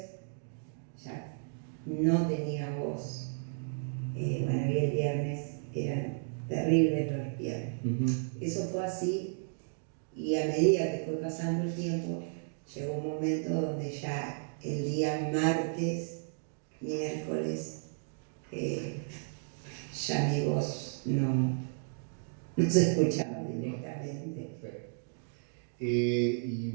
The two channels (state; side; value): silent; left; digital silence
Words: ya no tenía voz. Y el viernes eran terribles los viernes. Eso fue así, y a medida que fue pasando el tiempo, llegó un momento donde ya el día martes, miércoles, ya mi voz no se escuchaba directamente. Perfecto. Y